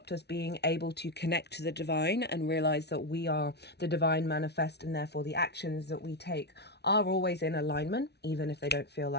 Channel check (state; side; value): late; right; 0.49 ms